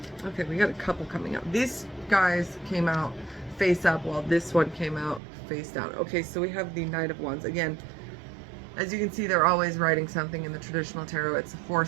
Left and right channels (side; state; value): left; drops out; at 5.2 s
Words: Okay, we got a couple coming up. These guys came out face up, while this one came out face down. Okay, so we have the Knight of Wands. Again, as you can see, they're always riding something in the traditional tarot. It's a